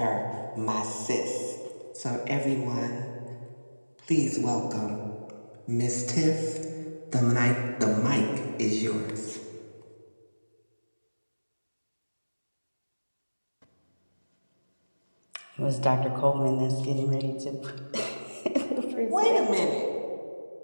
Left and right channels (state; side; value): inverted; both; correlation -1.00